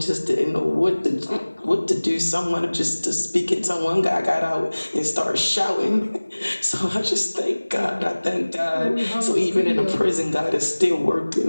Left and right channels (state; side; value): inverted; both; correlation -1.00